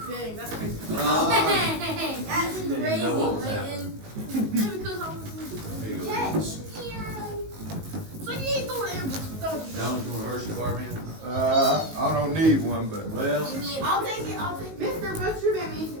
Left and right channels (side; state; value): left; late; 19 ms